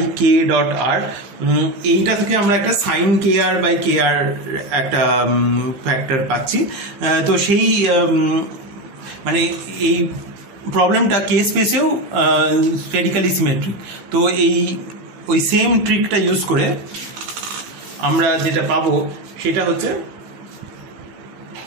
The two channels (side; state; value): left; late; 16 ms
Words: k dot r, এইটা থেকে আমরা একটা sign k r by k আর একটা ফ্যাক্টর পাচ্ছি। তো সেই মানে এই প্রবলেমটা কে স্পেসেও স্ফেরিক্যালি সিমেট্রিক। তো ওই সেম ট্রিকটা ইউজ করে আমরা যেটা পাবো সেটা হচ্ছে